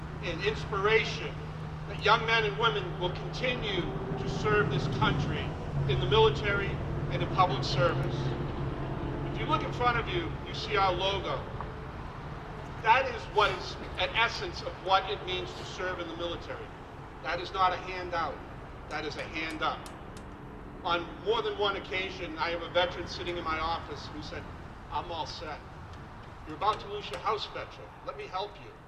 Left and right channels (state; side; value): identical; both; correlation 1.00